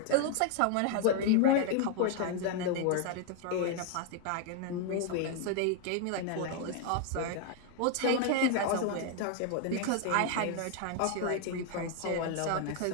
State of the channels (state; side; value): different; both; correlation 0.00